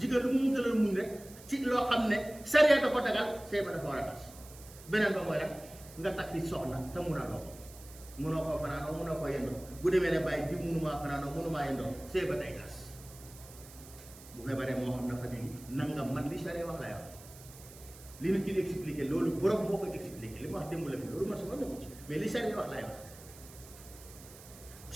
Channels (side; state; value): right; noise; hiss, 19 dB below the sound